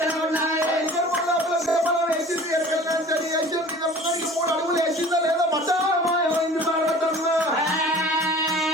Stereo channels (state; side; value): normal; both; correlation 0.44